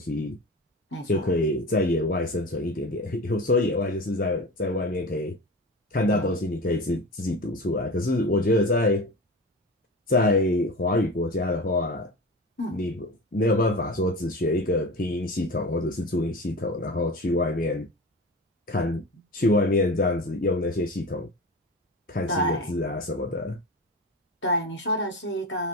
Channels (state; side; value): normal; both; correlation 0.30